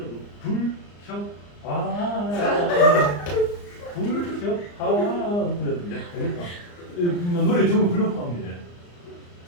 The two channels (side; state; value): right; late; 34 ms